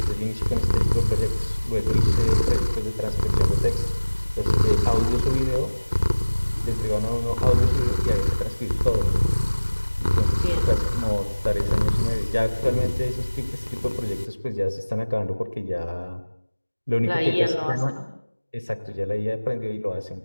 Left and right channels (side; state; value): both; inverted; correlation -1.00